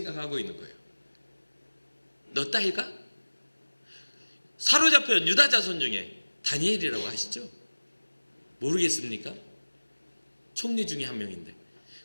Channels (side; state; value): both; inverted; correlation -1.00